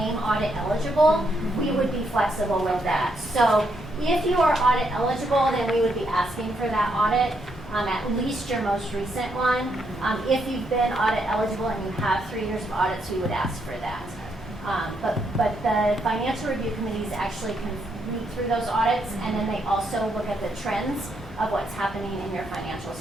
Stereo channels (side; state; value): both; normal; correlation 0.77